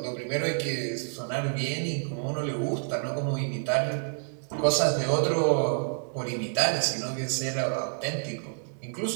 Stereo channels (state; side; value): silent; left; 59 dB below the other